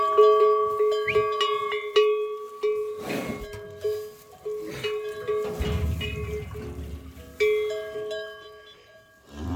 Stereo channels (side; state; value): both; identical; correlation 1.00